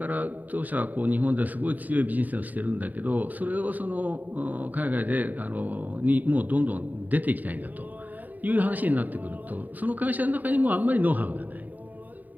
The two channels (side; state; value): left; late; 0.083 ms